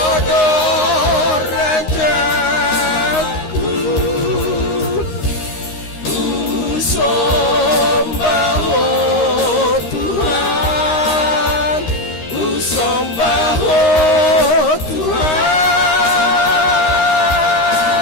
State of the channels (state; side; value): late; right; 13 ms